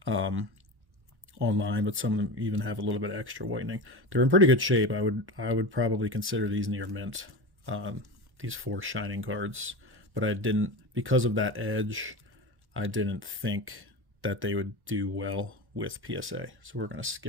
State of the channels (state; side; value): late; left; 1.1 ms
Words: online. But some of them even have a little bit of extra whitening. They're in pretty good shape. I would probably consider these near mint, these 4 shining cards. But I didn't, because of that edge, I didn't think that they would do well with PSA. So we're going to